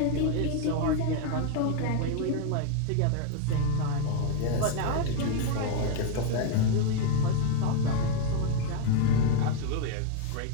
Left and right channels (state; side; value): different; both; correlation 0.00